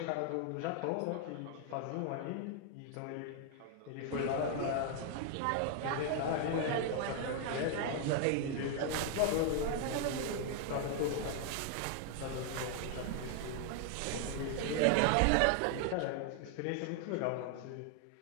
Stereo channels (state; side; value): different; both; correlation 0.00